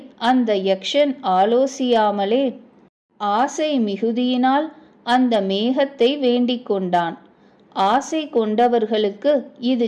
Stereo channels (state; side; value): identical; both; correlation 1.00